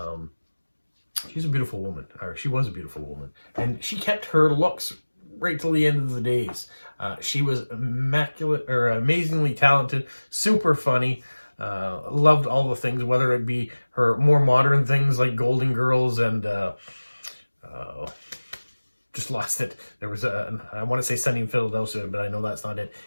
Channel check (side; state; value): both; inverted; correlation -1.00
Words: She's a beautiful woman, or she was a beautiful woman, and she kept her looks right till the end of the days. She was immaculate, or amazingly talented, super funny, loved all the things, whether it be her more modern things like Golden Girls and just lost it. There was I want to say Sunny in Philadelphia, but I know that's not it.